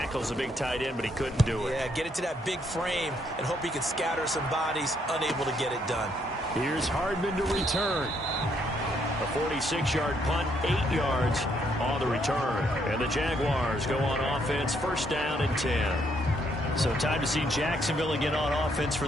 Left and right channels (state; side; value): normal; both; correlation 0.72